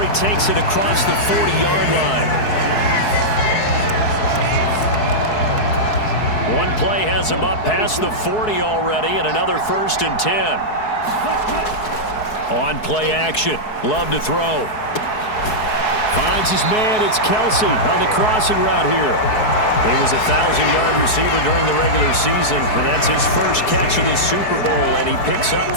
he takes it across the 40-yard line. One play has him up past the 40 already, and another 1st and 10. On play action. Love to throw. Finds his man. It's Kelsey on the crossing route here. He was a 1,000-yard receiver during the regular season, and that's his first catch of this Super Bowl, and he picks up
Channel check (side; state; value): right; late; 4.7 ms